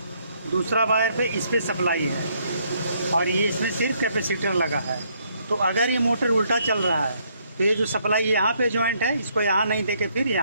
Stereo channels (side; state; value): both; inverted; correlation -0.70